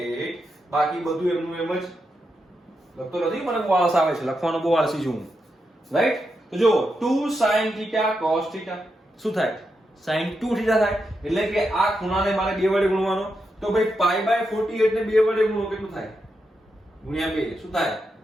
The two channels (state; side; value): normal; both; correlation 0.85